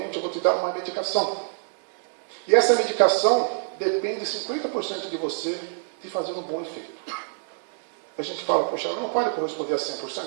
eu vou te dar uma medicação. E essa medicação depende 50% de você de fazer um bom efeito. a gente fala, poxa, ela não pode corresponder a 100%, então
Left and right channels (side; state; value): left; silent; digital silence